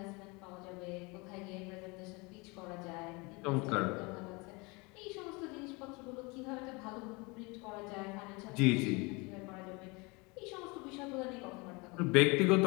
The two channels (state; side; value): quieter; right; 27.3 dB